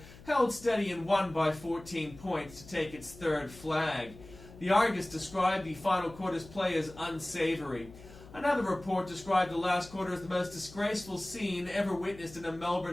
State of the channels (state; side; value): noise; left; hum, 19 dB below the sound